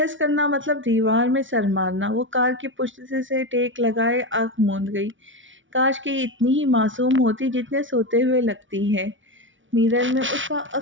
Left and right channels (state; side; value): late; left; 0.56 ms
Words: کرنا مطلب دیوار میں سر مارنا۔ وہ کار کی پشت سے ٹیک لگائے آنکھ موند گئی۔ کاش کہ یہ اتنی ہی معصوم ہوتی جتنے سوتے ہوئے لگتی ہے۔ میرر میں اس کا